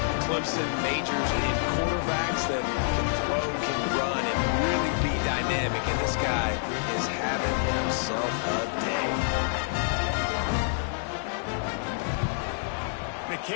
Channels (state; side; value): silent; right; digital silence